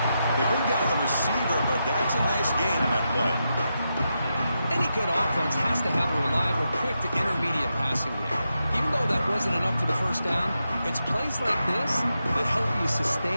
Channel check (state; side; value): inverted; both; correlation -0.87